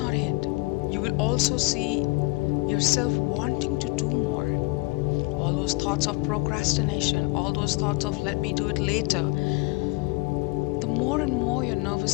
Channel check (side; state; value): right; quieter; 26.0 dB